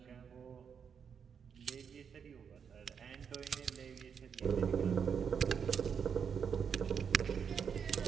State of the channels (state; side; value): quieter; left; 7.0 dB